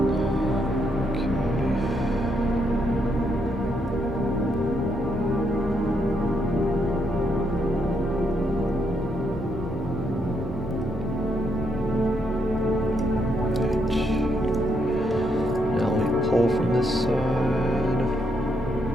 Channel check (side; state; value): left; noise; rumble, 20 dB below the sound